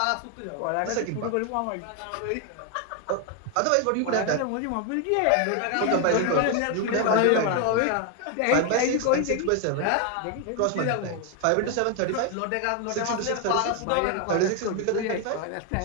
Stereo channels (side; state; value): both; different; correlation 0.01